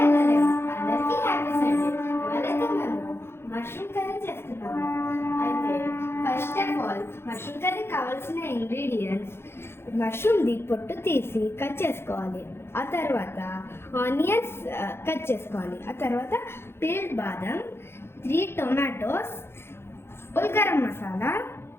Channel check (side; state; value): right; late; 0.12 ms